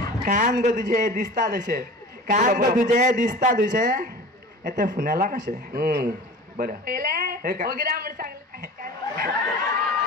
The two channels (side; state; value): both; normal; correlation 0.38